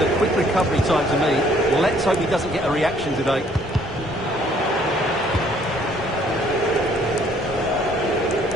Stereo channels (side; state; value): both; normal; correlation 0.62